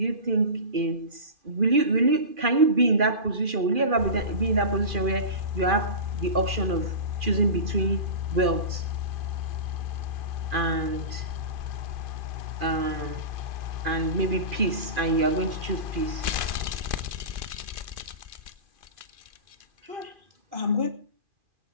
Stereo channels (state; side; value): late; left; 2.4 ms